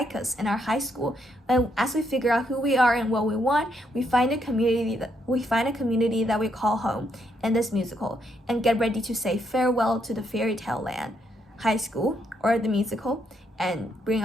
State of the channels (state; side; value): normal; both; correlation 0.75